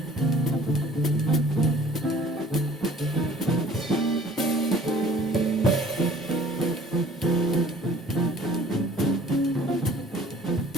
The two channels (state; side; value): normal; both; correlation 0.51